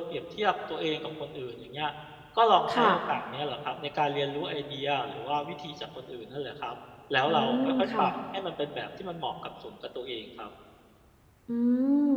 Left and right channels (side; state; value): both; identical; correlation 1.00